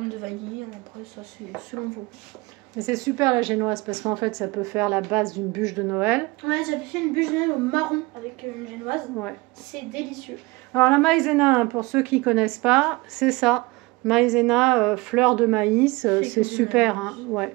de vanille. Après, ça, c'est selon vous. Mais c'est super la génoise parce qu'en fait, ça peut faire la base d'une bûche de Noël. Ouais, j'avais fait une bûche de Noël au marron avec une génoise. Ouais. C'est délicieux. Alors, la maïzena, hein, pour ceux qui ne connaissent pas, c'est ça. Maïzena, fleur de maïs, c'est super. Hein, ouais.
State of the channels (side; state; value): left; quieter; 23.5 dB